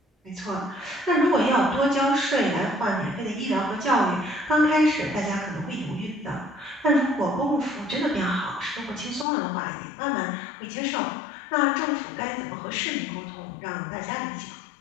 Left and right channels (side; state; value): right; drops out; at 9.2 s